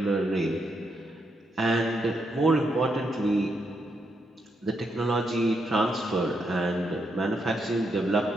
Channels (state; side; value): normal; both; correlation 0.79